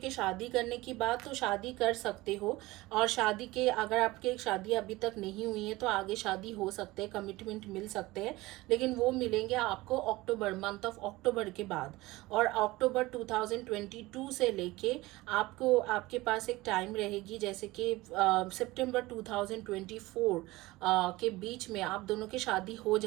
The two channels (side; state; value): left; quieter; 19.9 dB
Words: शादी करने की बात, तो शादी कर सकते हो। और शादी के अगर आपके शादी अभी तक नहीं हुई है तो आगे शादी हो सकते हैं, कमिटमेंट मिल सकते हैं। लेकिन वो मिलेंगे आपको अक्टूबर, मंथ ऑफ अक्टूबर के बाद। और अक्टूबर 2022 से लेके आपको आपके पास एक टाइम रहेगी, जैसे कि सितंबर 2024 के बीच में आप दोनों की शादी हो